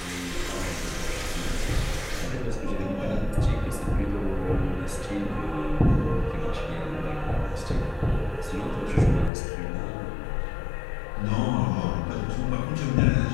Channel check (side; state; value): right; drops out; at 9.3 s